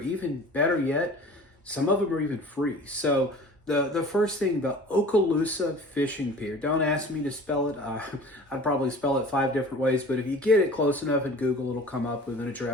better yet, some of them are even free. So the first thing, the Okaloosa Fishing Pier. Don't ask me to spell it. I'd probably spell it 5 different ways, but if you get it close enough in Google, it'll come up with an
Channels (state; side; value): normal; both; correlation 0.43